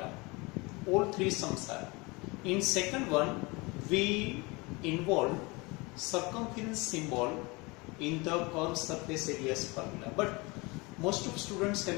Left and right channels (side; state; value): right; quieter; 25.7 dB